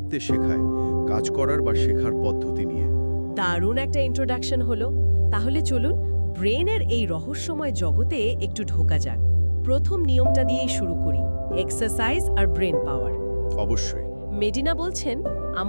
শেখায়, কাজ করার বা শেখার পদ্ধতি নিয়ে। দারুণ একটা ইন্ট্রোডাকশন হলো। তাহলে চলুন ব্রেনের এই রহস্যময় জগতে একটু ঢোকা যাক। প্রথম নিয়মটা দিয়েই শুরু করি, এক্সারসাইজ আর ব্রেন পাওয়ার। অবশ্যই। মেডিনা বলছেন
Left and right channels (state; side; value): inverted; both; correlation -1.00